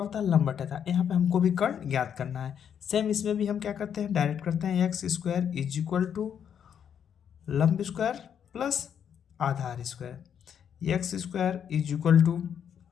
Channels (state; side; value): quieter; right; 8.4 dB